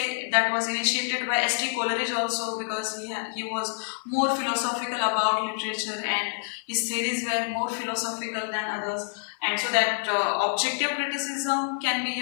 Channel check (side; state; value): right; silent; 60 dB below the other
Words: that was initiated by S.T. Coleridge also, because he was more philosophical about literature and his theories were more philosophical than others. And so that objective criticism can be,